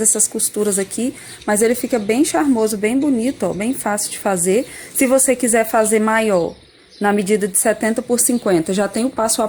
essas costuras aqui, mas ele fica bem charmoso, bem bonito, ó, bem fácil de fazer. Se você quiser fazer maior, na medida de 70 por 50, já tem o passo a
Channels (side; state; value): both; identical; correlation 1.00